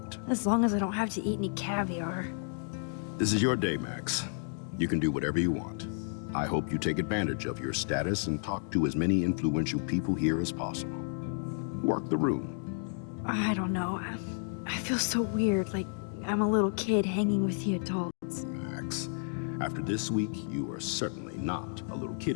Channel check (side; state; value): right; silent; 57 dB below the other